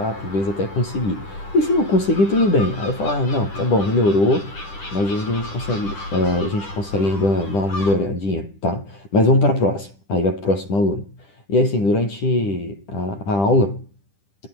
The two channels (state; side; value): late; right; 10 ms